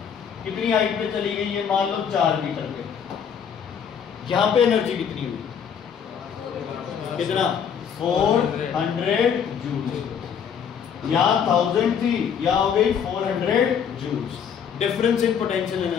कितनी हाइट पे चली गई? ये मान लो 4 मीटर पे। यहां पे एनर्जी कितनी हुई? कितना? 400 जूल्स। यहाँ 1000 थी, यहाँ हो गई 400 joules. Difference in potential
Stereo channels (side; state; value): right; quieter; 7.6 dB